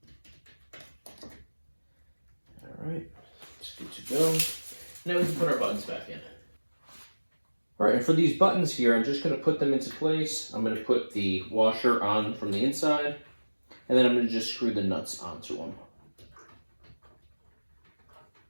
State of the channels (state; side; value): inverted; both; correlation -1.00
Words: All right, it's good to go. Now we can put our buttons back in. All right, and for these buttons here, I'm just gonna put them into place. I'm gonna put the washer on from the inside, and then I'm gonna just screw the nuts onto them.